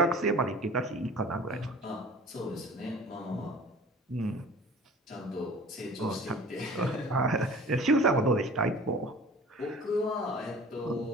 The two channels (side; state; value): both; normal; correlation 0.44